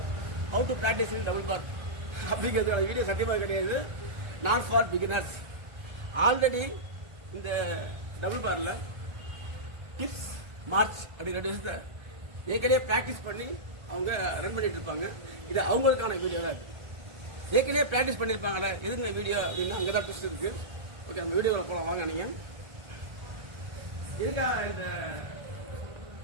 how to practice in double bar அப்படிங்கிறதுக்கான வீடியோ சத்தியமாக கிடையாது. Not for beginners. ஆல்ரெடி இந்த டபுள் பாரில் டிப்ஸ் மார்ச் அப்படிங்கிற விஷயத்தை ஏற்கனவே ப்ராக்டிஸ் பண்ணி அவங்க ரன் பண்ணிட்டு இருப்பாங்க. இது அவங்களுக்கான வீடியோ தான். ஏற்கனவே ப்ராக்டிஸ் பண்ணியிருப்பாங்கல்ல, எதுங்க வீடியோ அப்படின்னா அங்கே தான் ட்விஸ்ட் இருக்கு. ஓகே, நம்ம வீடியோவில் போகலாம் வாங்க. நீங்கள் இருக்கா இந்த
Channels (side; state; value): left; late; 1.3 ms